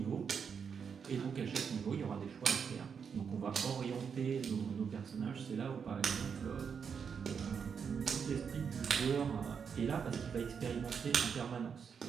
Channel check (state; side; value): quieter; left; 6.6 dB